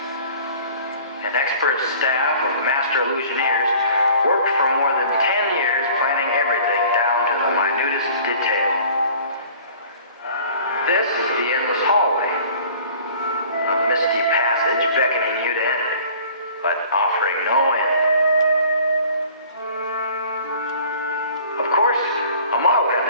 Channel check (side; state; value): both; inverted; correlation -0.49